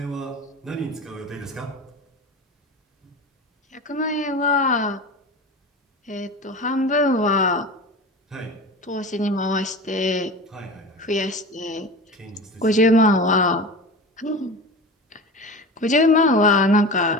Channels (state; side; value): normal; both; correlation 0.31